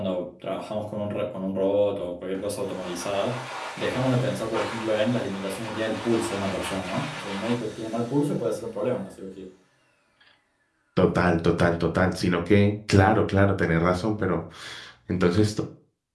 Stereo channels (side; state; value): both; identical; correlation 1.00